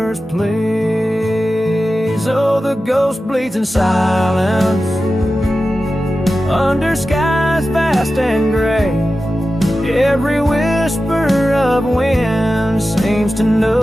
please. Oh, the ghost bleeds in silence under skies vast and gray. Every whisper of wind seems to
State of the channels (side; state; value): both; normal; correlation 0.93